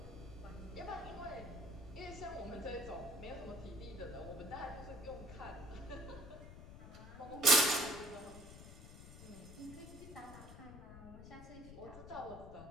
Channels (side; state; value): left; noise; rumble, 13 dB below the sound